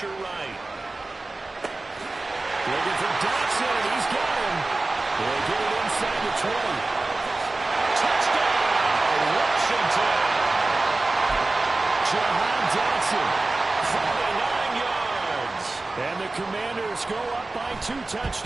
right. Looking for Dotson. He's got him. They'll get it inside the 20. Touchdown, Washington. Jahan Dotson, 49 yards. And the Commanders go up by 2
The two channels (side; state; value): left; quieter; 3.2 dB